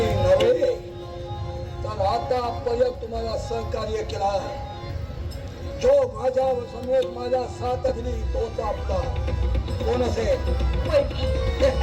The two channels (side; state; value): both; identical; correlation 1.00